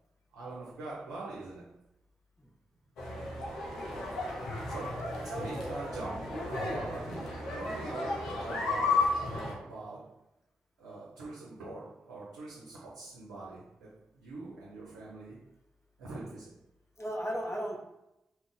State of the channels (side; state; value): both; normal; correlation 0.73